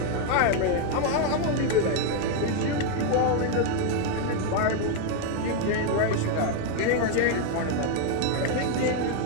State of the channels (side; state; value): both; different; correlation 0.01